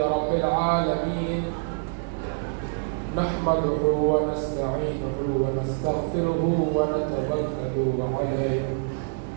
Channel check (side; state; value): left; silent; 61 dB below the other